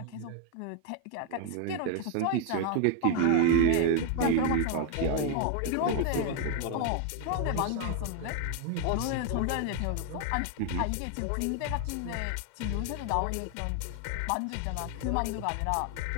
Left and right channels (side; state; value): both; different; correlation 0.01